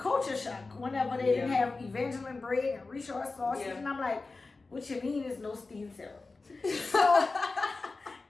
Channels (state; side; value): quieter; right; 3.7 dB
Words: shock whenever they didn't have Evangeline bread and Richard sausage. And I'm like, what you mean is no steamed syrup? So